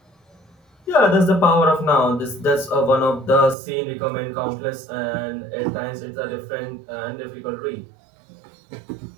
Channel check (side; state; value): left; drops out; at 3.6 s